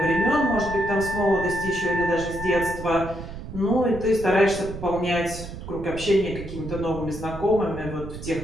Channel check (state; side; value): noise; right; rumble, 10 dB below the sound